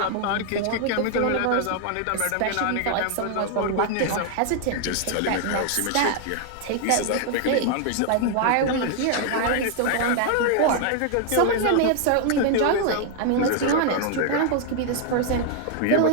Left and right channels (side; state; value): both; different; correlation 0.00